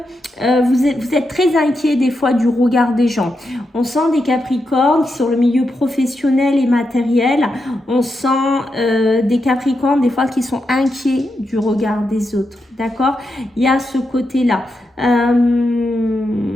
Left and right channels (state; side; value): normal; both; correlation 0.85